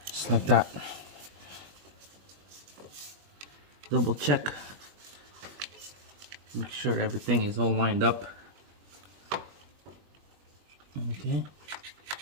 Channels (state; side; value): late; left; 21 ms